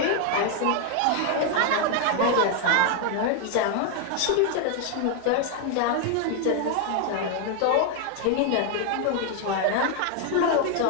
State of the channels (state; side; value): different; both; correlation 0.00